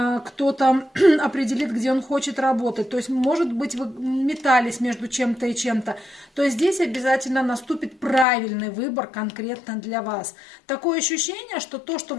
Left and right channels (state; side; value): drops out; right; at 8.2 s